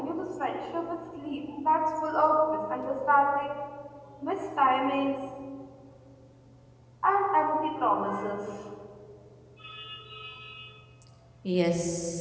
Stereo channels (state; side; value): identical; both; correlation 1.00